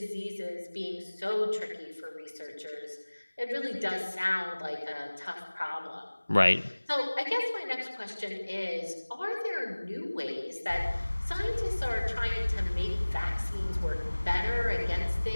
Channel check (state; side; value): inverted; both; correlation -1.00